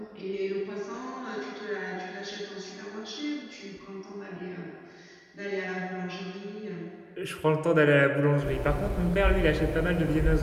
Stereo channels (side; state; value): both; identical; correlation 1.00